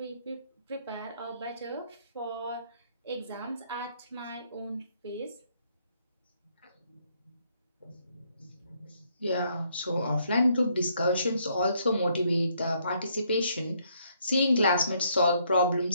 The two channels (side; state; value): both; inverted; correlation -0.70